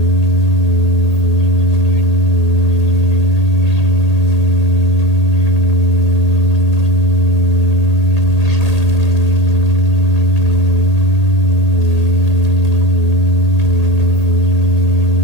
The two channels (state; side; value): late; right; 1.8 ms